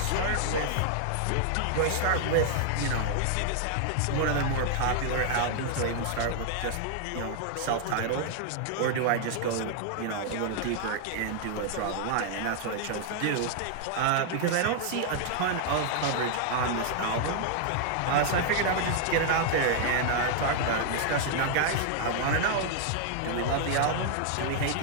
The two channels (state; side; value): different; both; correlation -0.01